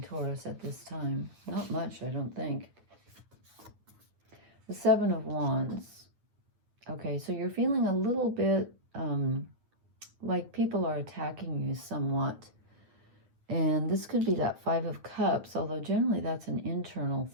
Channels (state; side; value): late; left; 9.3 ms